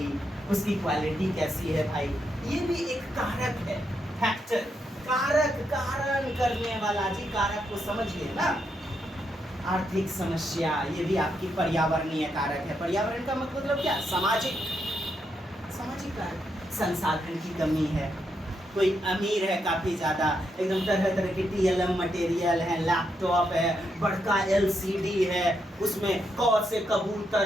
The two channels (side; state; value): both; normal; correlation 0.81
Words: उसकी क्वालिटी कैसी है भाई, ये भी एक कारक है, फैक्टर, कारक, कारण करने वाला। जी, कारक को समझिए ना। आर्थिक समस्या, ये भी आपकी पर्यावरणीय कारक है। पर्यावरण का मतलब क्या? सामाजिक कारक। संसाधन की कमी है, कोई अमीर है काफी ज्यादा, एकदम तरह तरह की TLM मटेरियल है, लैपटॉप है, बड़का LCD है, उसमें क से